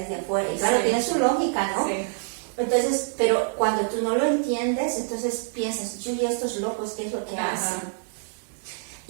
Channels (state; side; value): silent; left; digital silence